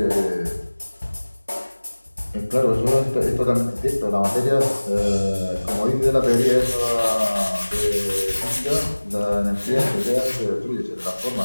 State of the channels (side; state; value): both; inverted; correlation -1.00